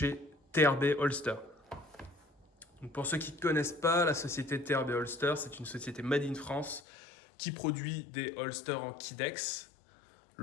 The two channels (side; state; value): right; drops out; at 6.8 s